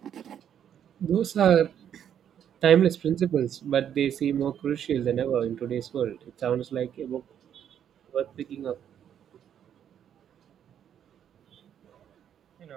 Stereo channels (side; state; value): left; quieter; 9.3 dB